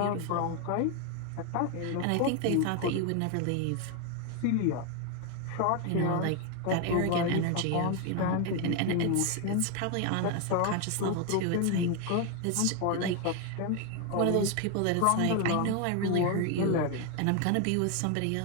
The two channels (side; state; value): both; different; correlation 0.01